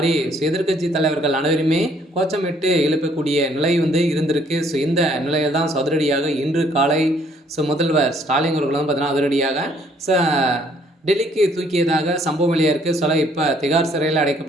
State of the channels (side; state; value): both; normal; correlation 0.64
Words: எதிர்க்கட்சி தலைவர்கள் அனைவருமே கோச்சமிட்டு எழுப்பக்கூடிய நிலை இருந்திருக்கு. இந்த நிலையில் தான் அதிரடியாக இன்று காலை முதல்வர் ஸ்டாலின் அவர்கள் பார்த்தீங்கன்னா அதிரடியாக டெல்லிக்கு தூக்கியதாக சம்பவம் வெளியாக இருக்குது. இப்போ திகார் சிறையில்